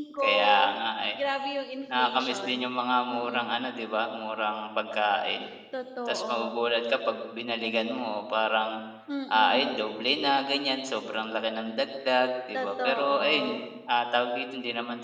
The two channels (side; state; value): both; identical; correlation 1.00